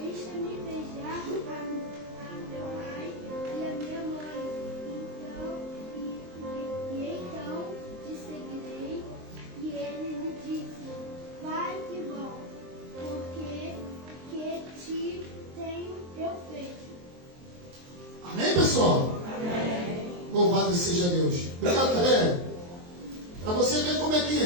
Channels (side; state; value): left; late; 23 ms